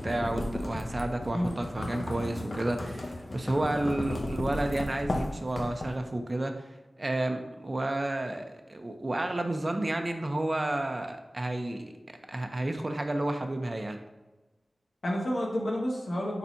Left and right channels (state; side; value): normal; both; correlation 0.97